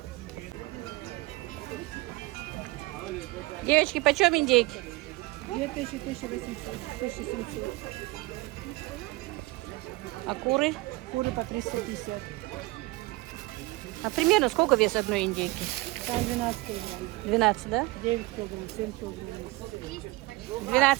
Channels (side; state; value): left; quieter; 21.9 dB